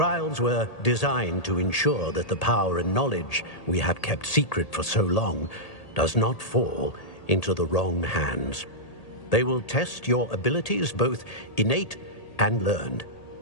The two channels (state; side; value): late; right; 1.8 ms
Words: were designed to ensure that the power and knowledge we have kept secret for so long does not fall into the wrong hands. They will test your abilities, both innate and learned.